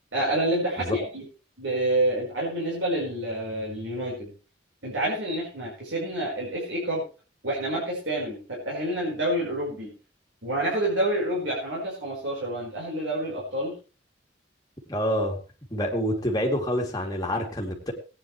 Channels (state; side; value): normal; both; correlation 0.02